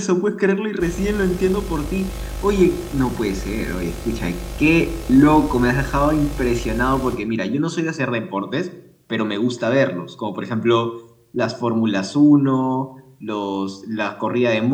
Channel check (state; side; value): identical; both; correlation 1.00